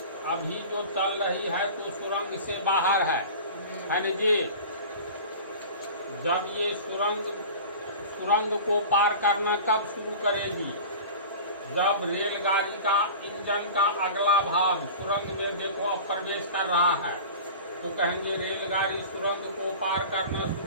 अभी जो चल रही है तो सुरंग से बाहर है ना जी। जब ये सुरंग को पार करना कब शुरू करेगी? जब रेलगाड़ी का इंजन का अगला भाग सुरंग में देखो अब प्रवेश कर रहा है, तो कहेंगे रेलगाड़ी सुरंग को पार करना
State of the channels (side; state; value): both; inverted; correlation -0.36